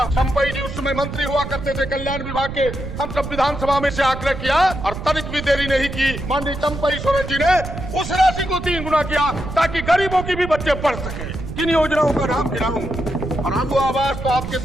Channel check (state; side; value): noise; right; rumble, 8 dB below the sound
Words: चंपई जी उस समय मंत्री हुआ करते थे कल्याण विभाग के। हम सब विधानसभा में से आग्रह किया और तनिक भी देरी नहीं की, माननीय चंपई सोरेन जी ने उस राशि को 3 गुना किया ताकि गरीबों की भी बच्चे पढ़ सके। किन योजनाओं का नाम गिनाऊं? और आगू आवाज तो आपके